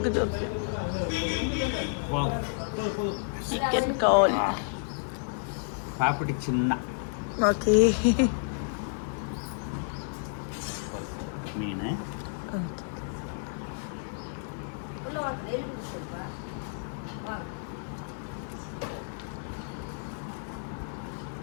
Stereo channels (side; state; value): right; silent; digital silence